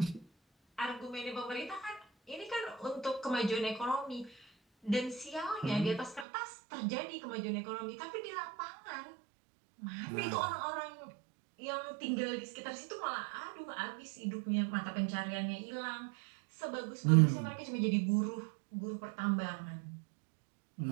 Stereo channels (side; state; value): left; drops out; at 6.2 s